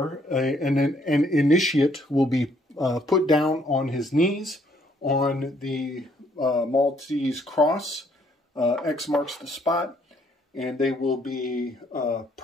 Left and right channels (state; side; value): normal; both; correlation 0.67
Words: an initiate will be put down on his knees on the Maltese cross. X marks the spot, and they will be